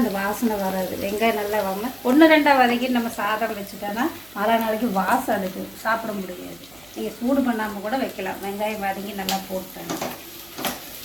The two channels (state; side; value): noise; right; hum, 27 dB below the sound